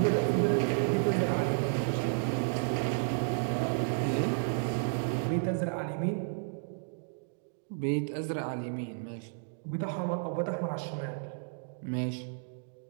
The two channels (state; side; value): silent; left; digital silence